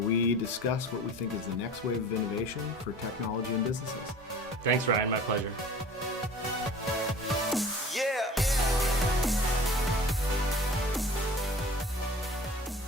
discuss what we think is the next wave of innovation for technology and businesses. Thanks, Ryan. My pleasure.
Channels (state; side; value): normal; both; correlation 0.43